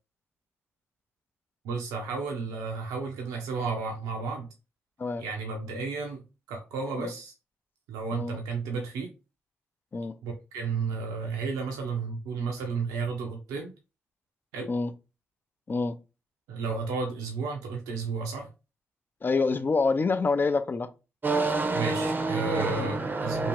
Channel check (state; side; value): normal; both; correlation 0.68